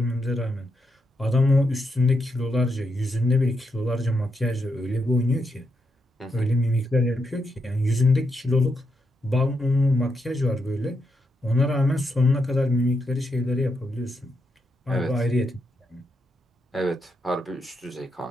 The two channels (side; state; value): both; normal; correlation 0.82